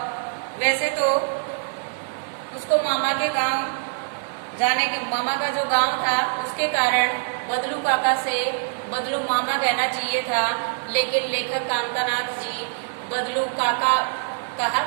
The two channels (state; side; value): silent; left; 57 dB below the other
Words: वैसे तो उसको मामा के गांव जाने के, मामा का जो गांव था उसके कारण बदलू काका से बदलू मामा कहना चाहिए था, लेकिन लेखक कांतानाथ जी बदलू काका कहा